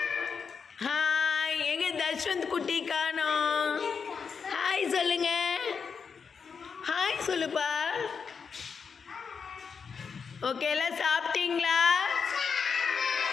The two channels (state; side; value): quieter; right; 5.9 dB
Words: Hi. எங்க தஷ்வந்த் குட்டி காணோம். ஹாய் சொல்லுங்க. ஹாய் சொல்லுப்பா. ஓகே, எல்லாம் சாப்பிட்டீங்களா?